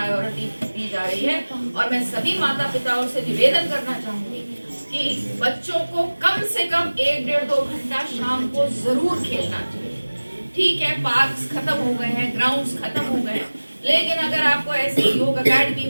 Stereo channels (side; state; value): both; inverted; correlation -1.00